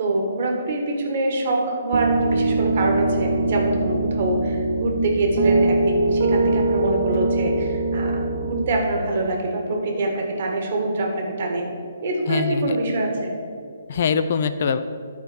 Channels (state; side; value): inverted; both; correlation -0.70